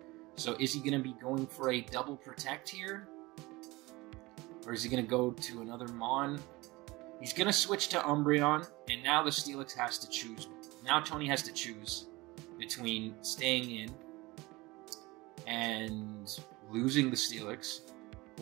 So is he going to be going for a double Protect here? Or is he going to go to another Mon? He's going to switch to Umbreon, and now the Steelix has to choose. Now Tony has to choose between staying in and losing the Steelix,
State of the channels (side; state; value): left; quieter; 21.8 dB